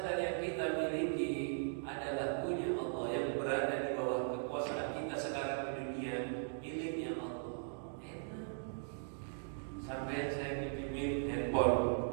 yang kita miliki adalah punya Allah, yang berada di bawah kekuasaan kita sekarang di dunia, miliknya Allah. Enak. Sampai saya pinjemin handphone,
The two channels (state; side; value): silent; left; digital silence